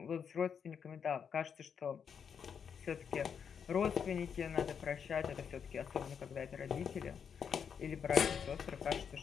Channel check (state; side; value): quieter; right; 7.1 dB